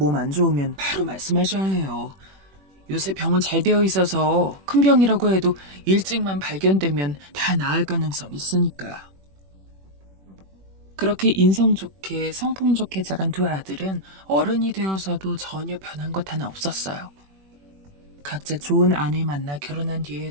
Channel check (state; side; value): late; left; 21 ms